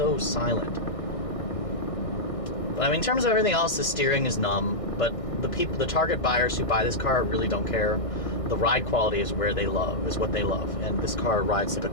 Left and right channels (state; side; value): late; right; 1.6 ms